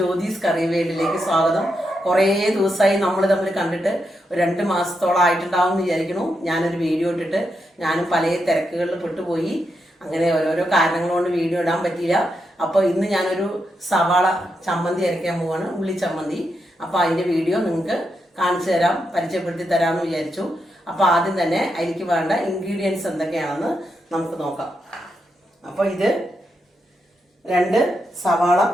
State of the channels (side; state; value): both; normal; correlation 0.84